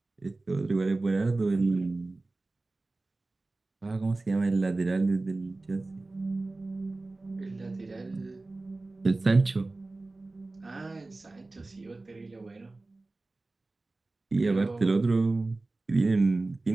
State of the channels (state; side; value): quieter; left; 3.2 dB